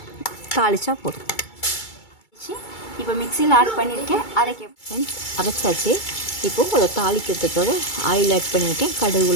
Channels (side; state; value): right; late; 2.3 ms